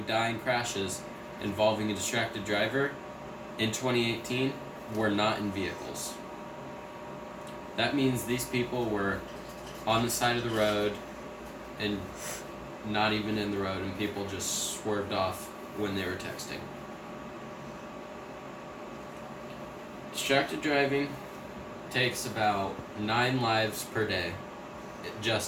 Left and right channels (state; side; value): identical; both; correlation 1.00